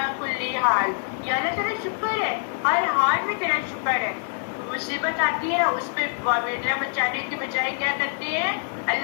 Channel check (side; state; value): right; silent; 61 dB below the other